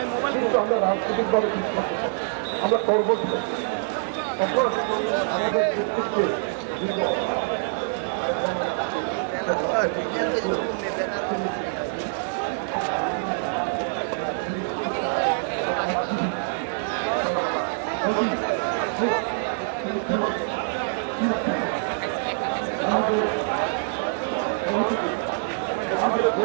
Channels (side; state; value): left; silent; digital silence